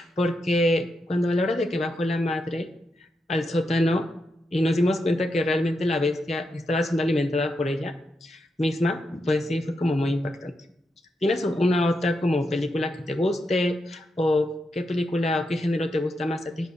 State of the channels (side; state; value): both; normal; correlation 0.84